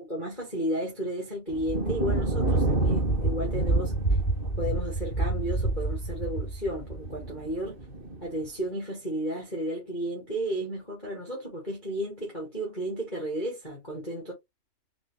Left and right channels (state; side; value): late; right; 2.3 ms